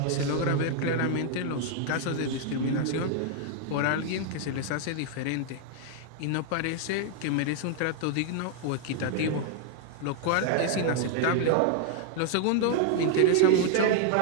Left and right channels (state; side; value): different; both; correlation 0.00